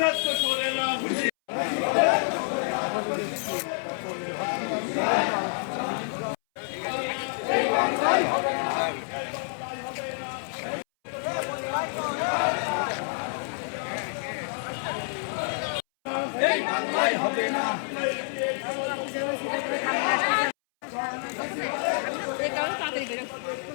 তো সরে না এই বাংলায় হবে না।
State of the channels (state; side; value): silent; right; 59 dB below the other